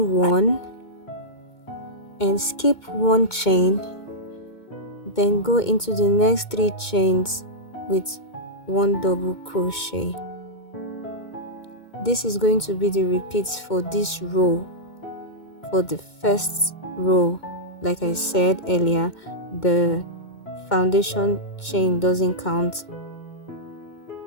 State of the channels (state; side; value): late; right; 2.2 ms